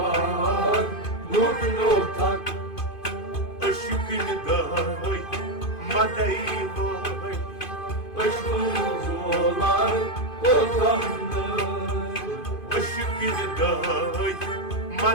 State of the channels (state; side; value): late; right; 2.5 ms